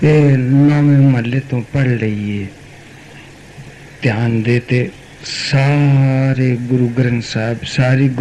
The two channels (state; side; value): identical; both; correlation 1.00